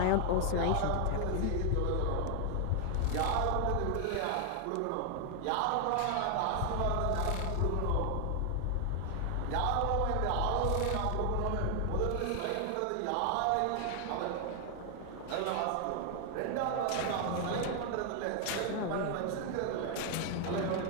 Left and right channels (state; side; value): different; both; correlation 0.00